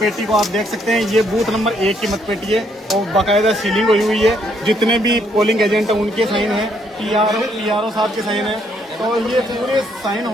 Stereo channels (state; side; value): normal; both; correlation 0.71